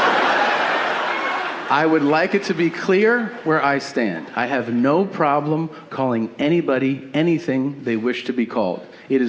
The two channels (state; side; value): identical; both; correlation 1.00